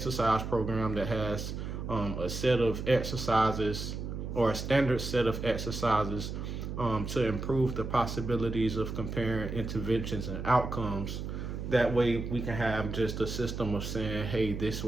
program that has a set of exercises or a standard set of exercises to improve the possibilities of comparing interventions and outcomes. That way we can have just a system of saying, hey, this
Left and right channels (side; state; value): right; noise; hum, 6 dB below the sound